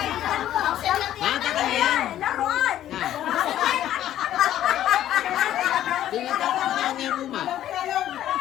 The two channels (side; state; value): right; quieter; 12.2 dB